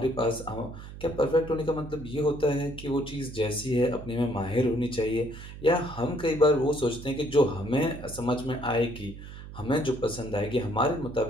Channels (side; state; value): right; noise; hum, 13 dB below the sound